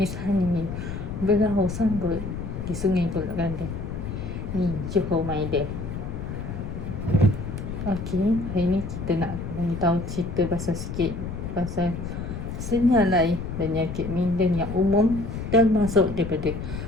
Hani berlaut sanggut di Sungai Kolak Kelantan. Ni Johor my day. Okey, hari ni kita nak beritahu cerita pasal sikit pasal senyalai penyakit minda yang umum termasuk daripada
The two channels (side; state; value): left; noise; rumble, 6 dB below the sound